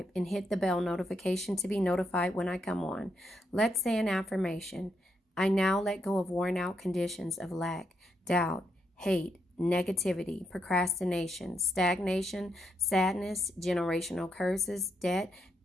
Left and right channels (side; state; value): both; normal; correlation 0.79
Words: and hit the bell notification to be notified when I come on. Let's say an affirmation. I now let go of worn out conditions of lack, doubt, hate, negativity, procrastination, stagnation, sadness, generational curses, debt,